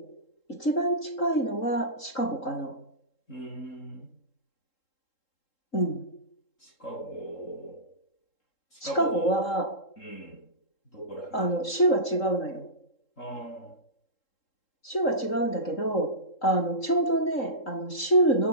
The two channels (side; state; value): right; late; 3.7 ms